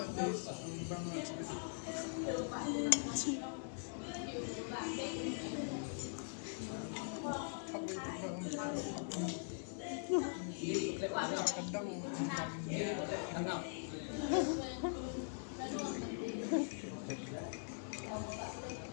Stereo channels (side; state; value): right; silent; digital silence